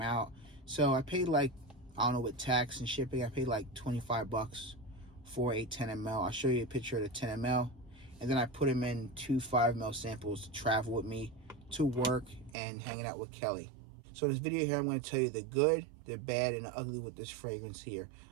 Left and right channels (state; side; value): drops out; left; at 12.6 s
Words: out. So I paid like, I don't know, with tax and shipping, I paid like 25 bucks for a 10 ml. I'll show you a picture of the 10 ml. And then I put him in 2 5 ml samples to travel with me to work and hanging out with Kelly. So in this video here, I'm going to tell you the good, the bad, and the ugly with this fragrance here.